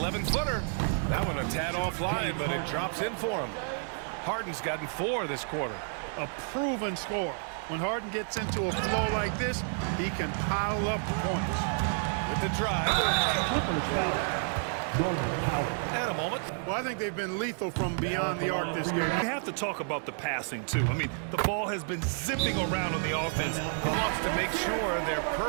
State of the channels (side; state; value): left; silent; 58 dB below the other